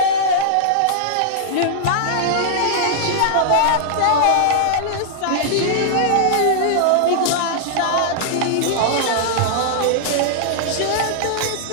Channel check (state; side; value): different; both; correlation -0.01